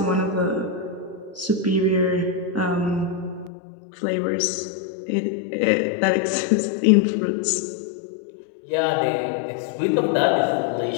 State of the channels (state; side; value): drops out; right; at 3.5 s